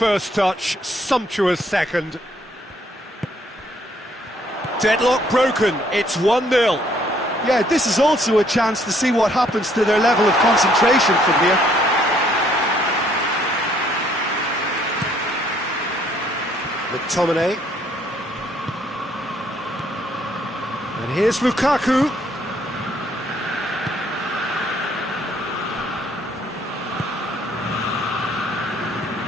touch, sumptuous second. Deadlock broken, it's 1-0. Yeah, this is also a chance to see what happens to their level of concentration from here. McTominay. And here's Lukaku.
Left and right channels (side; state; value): both; normal; correlation 0.66